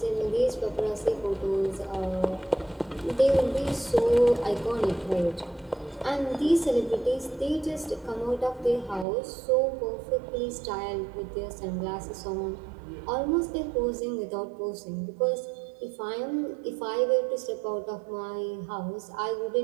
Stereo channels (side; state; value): left; drops out; at 9.1 s